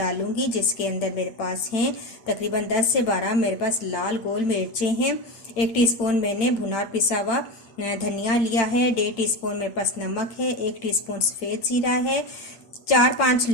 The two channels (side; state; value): right; late; 8.5 ms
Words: जिसके अंदर मेरे पास हैं तकरीबन 10 से 12 मेरे पास लाल गोल मिर्चें हैं। 1 टीस्पून मैंने भुना पिसा हुआ धनिया लिया है। 1.5 टीस्पून मेरे पास नमक है। 1 टीस्पून सफ़ेद जीरा है। 4-5